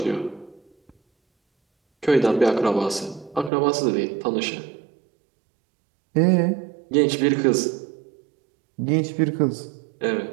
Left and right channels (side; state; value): left; drops out; at 3.5 s